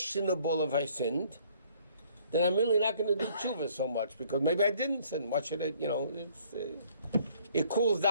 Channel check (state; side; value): inverted; both; correlation -0.61